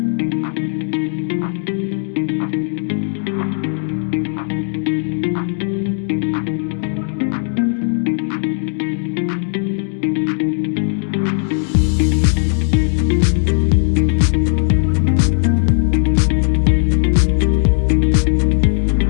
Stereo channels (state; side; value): silent; right; digital silence